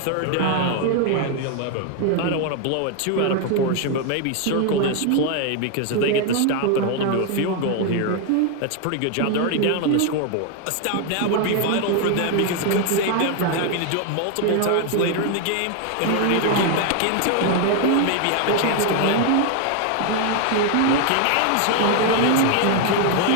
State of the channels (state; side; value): different; both; correlation 0.01